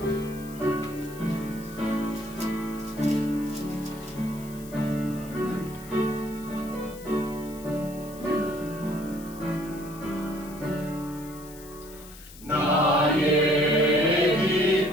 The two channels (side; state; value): left; noise; hiss, 19 dB below the sound